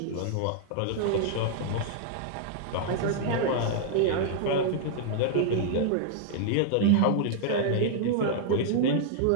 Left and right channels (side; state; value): both; different; correlation -0.01